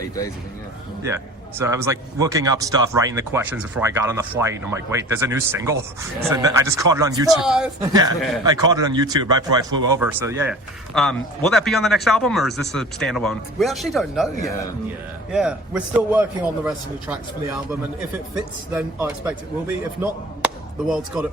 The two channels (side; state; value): both; normal; correlation 0.42